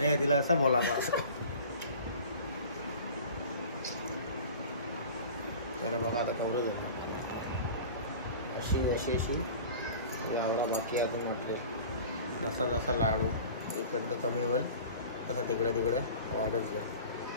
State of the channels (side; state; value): both; inverted; correlation -0.41